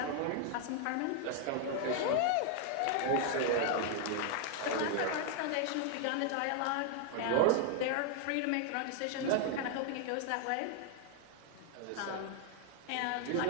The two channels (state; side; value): different; both; correlation 0.00